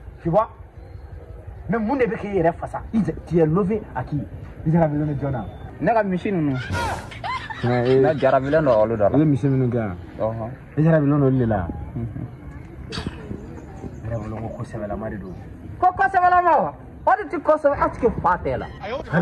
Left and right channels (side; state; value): both; identical; correlation 1.00